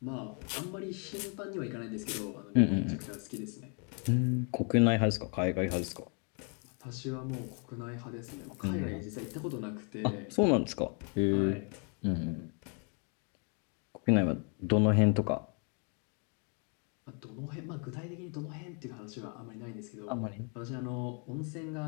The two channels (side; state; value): right; quieter; 38.4 dB